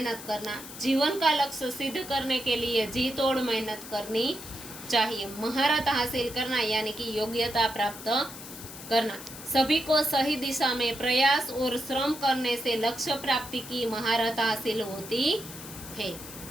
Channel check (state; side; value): noise; left; hiss, 13 dB below the sound